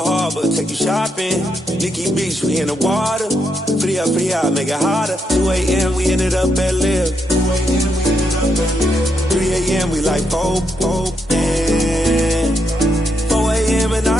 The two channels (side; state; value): both; normal; correlation 0.80